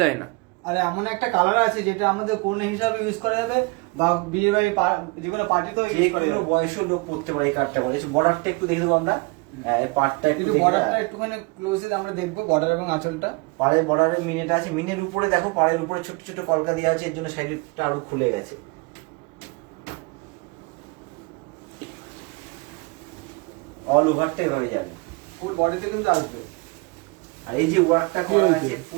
যায় না। আর এমন একটা কালার আছে যেটা আমাদের কন্যা হিসাবে ইউজ করা যাবে, বা বিয়ে বাড়ি যেকোনো পার্টিতেও যে ইউজ করা কোনো যাবে। বয়সের লোক পড়তে পারে এই কার্ডটা। বলে বর্ডারটা একটু দেখে দেবো আমরা, এই পার্টটা একটু কিন্তু দেখে বর্ডারটা দাও। একটুখানি ক্লোজে আমরা দেখবো, বর্ডার এবং আঁচলটা। পাড়ের বর্ডারের মিনেটা আছে, মিনের উপরে দেখো পাড়ের উপরে ছোট ছোট কলকা দেওয়া আছে, এর জন্য শাড়িটা আরো খুলে গেছে। অল ওভারটা এভাবে যাবে, ফুল বডিতে কিন্তু আসবে। আর এই যে ওয়ার্কটা করা আছে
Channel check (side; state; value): left; quieter; 28.2 dB